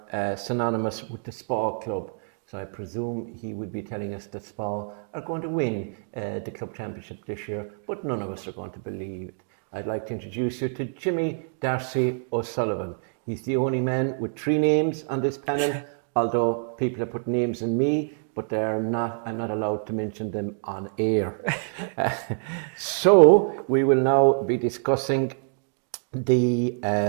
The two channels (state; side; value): silent; left; digital silence